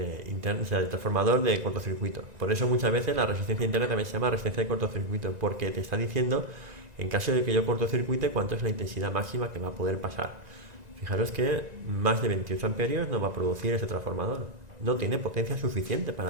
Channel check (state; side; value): late; left; 1.9 ms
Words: interno, o sea, el transformador de cortocircuito. Por eso muchas veces la resistencia interna también se llama resistencia de cortocircuito, porque te está diciendo, en caso de que yo cortocircuite, cuánto es la intensidad máxima que va a poder pasar. Fijaros que más de 28 amperios no va a producir este transformador. No tiene potencia suficiente